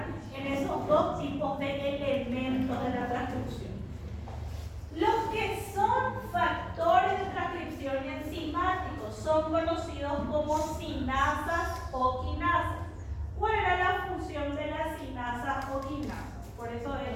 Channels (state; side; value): identical; both; correlation 1.00